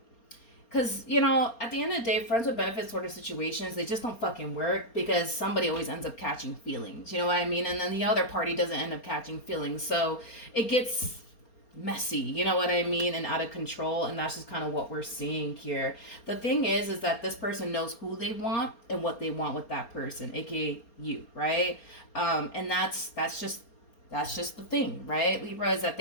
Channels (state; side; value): late; right; 4.3 ms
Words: you know, at the end of the day, friends with benefits sort of situations, they just don't fucking work, because somebody always ends up catching feelings. You know what I mean? And then the other party doesn't end up catching feelings. So it gets messy, you know what I mean, and out of control. And that's just kind of what we're seeing here. The thing is that this person knows who they want and what they want with that person, aka you, right? And that's just the thing, right, Libra, is that